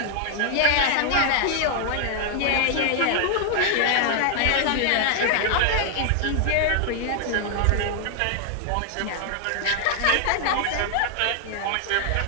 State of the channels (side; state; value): both; different; correlation 0.00